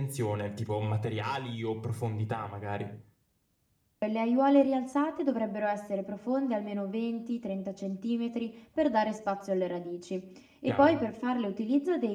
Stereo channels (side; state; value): both; identical; correlation 1.00